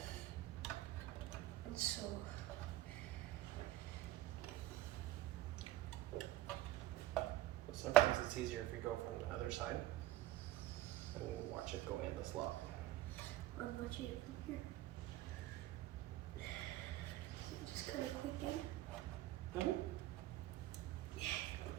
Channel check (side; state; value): left; quieter; 15.6 dB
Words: And so, Sometimes it's easier if we go from the other side and watch it go in the slot. I'm watching it from here. So just kind of quick in. Mm-hmm.